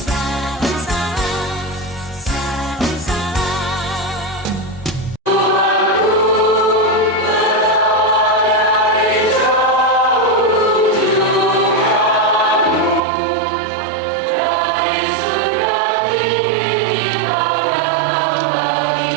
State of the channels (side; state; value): left; drops out; at 13.0 s